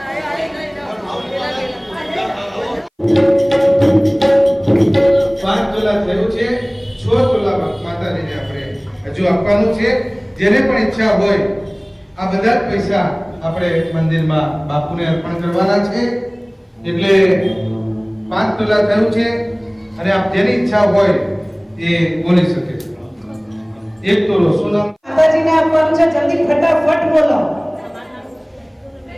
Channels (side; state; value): both; identical; correlation 1.00